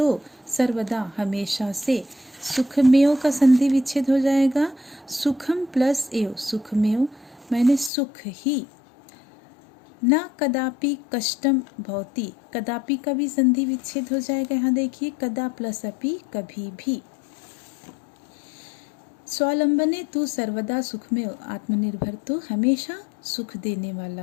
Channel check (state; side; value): drops out; right; at 7.9 s